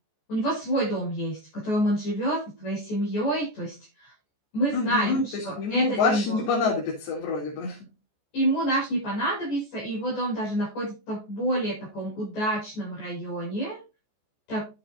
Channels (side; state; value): right; late; 14 ms